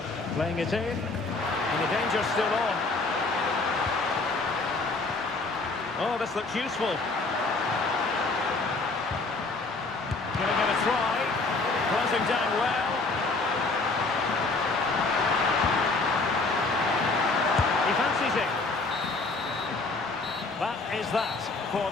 Playing it in, and the danger's still on. Oh, this looks useful. Giving it a try, closing down well. He fancies it. That is that for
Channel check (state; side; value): quieter; right; 3.6 dB